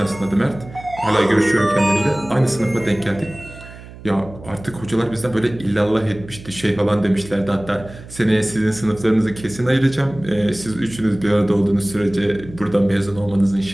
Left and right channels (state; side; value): noise; right; hum, 17 dB below the sound